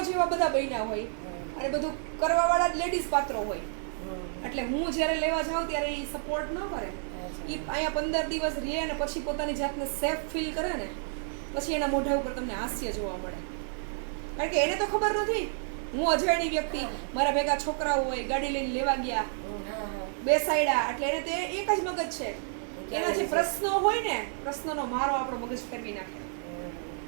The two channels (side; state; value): left; silent; 58 dB below the other